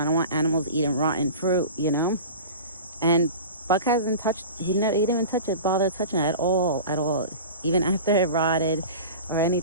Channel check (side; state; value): both; inverted; correlation -0.35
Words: don't want animals eating rotten fruit, you know? And Buck hasn't touched, he didn't even touch it, bother touching it at all. Even after it rotted or